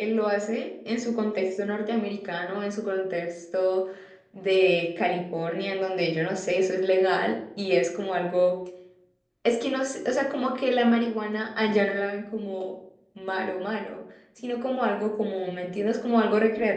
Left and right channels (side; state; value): both; identical; correlation 1.00